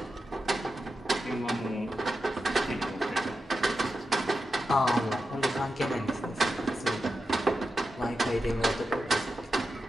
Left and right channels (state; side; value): normal; both; correlation 0.90